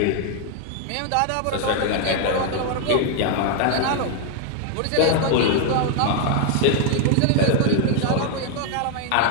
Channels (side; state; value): both; different; correlation 0.00